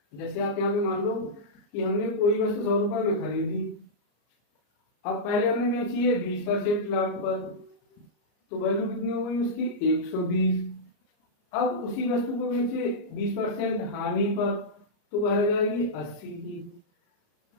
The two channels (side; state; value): right; late; 34 ms